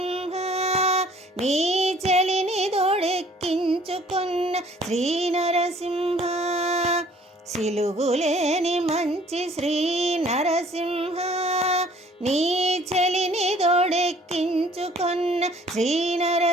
నీ చెలిని దొడెక్కించుకున్న శ్రీ నరసింహ సిలుగులేని మంచి శ్రీ నరసింహ నీ చెలిని దొడెక్కించుకున్న శ్రీ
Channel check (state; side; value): normal; both; correlation 0.56